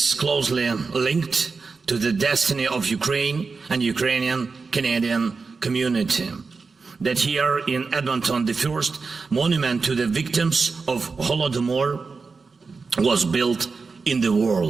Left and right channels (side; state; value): left; quieter; 4.6 dB